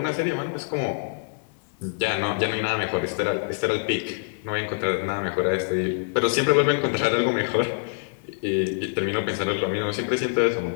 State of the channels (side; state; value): right; silent; digital silence